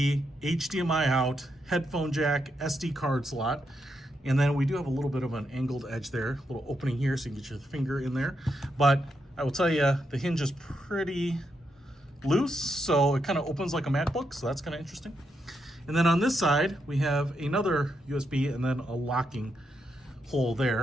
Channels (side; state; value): both; normal; correlation 0.82